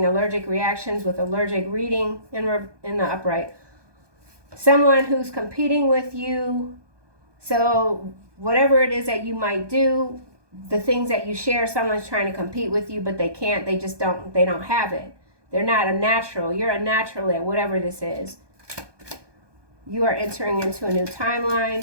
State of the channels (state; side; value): late; left; 1.2 ms